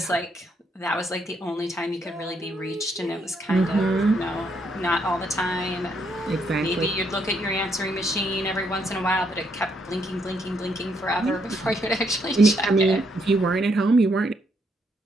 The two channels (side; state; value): both; normal; correlation 0.74